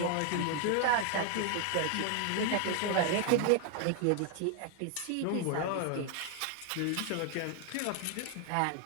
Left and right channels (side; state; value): both; different; correlation 0.01